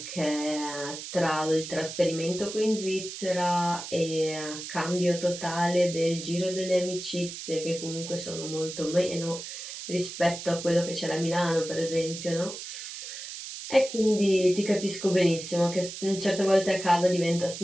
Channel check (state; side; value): noise; right; hiss, 9 dB below the sound